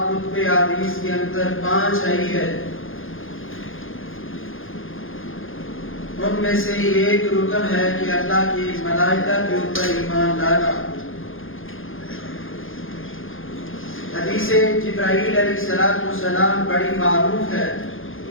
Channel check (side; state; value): right; late; 0.59 ms